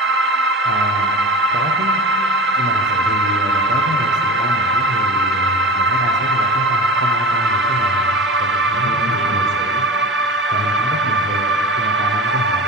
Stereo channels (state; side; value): normal; both; correlation 0.31